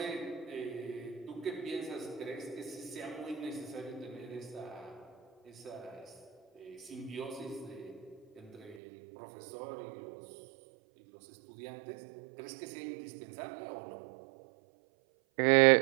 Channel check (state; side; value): drops out; left; at 8.8 s